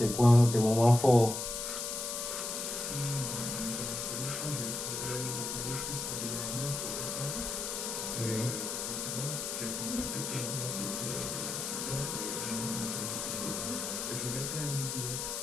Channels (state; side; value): noise; left; hiss, 3 dB below the sound